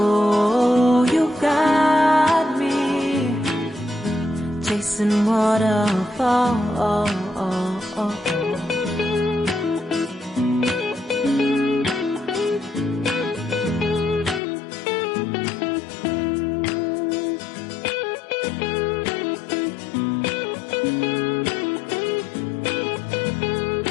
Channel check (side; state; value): right; drops out; at 14.4 s